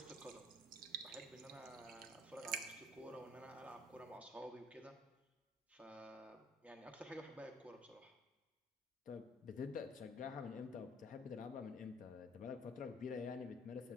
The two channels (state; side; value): normal; both; correlation 0.58